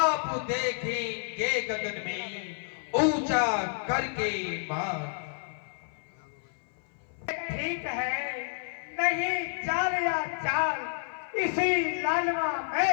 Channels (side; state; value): right; silent; 56 dB below the other